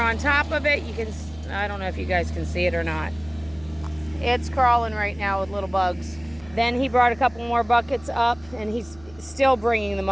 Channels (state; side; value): noise; right; hum, 23 dB below the sound